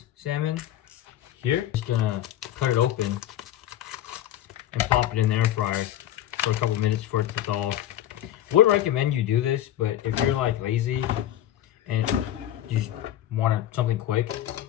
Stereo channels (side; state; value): right; quieter; 12.4 dB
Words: salmon here. Just gonna cut it open and pop it in the air fryer for a couple minutes for it to thaw. Would recommend you do this, but if you're like lazy and you just want something quick,